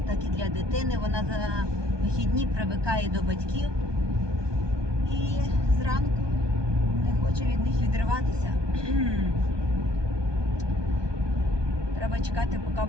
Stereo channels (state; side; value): late; left; 1.2 ms